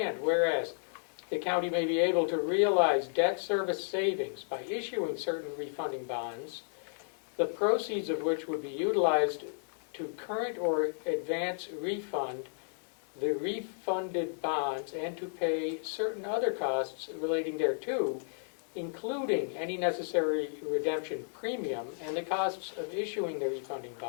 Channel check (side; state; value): right; silent; digital silence